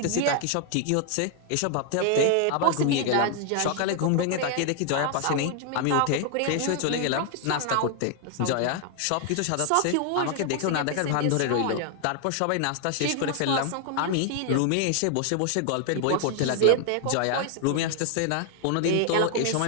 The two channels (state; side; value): different; both; correlation 0.00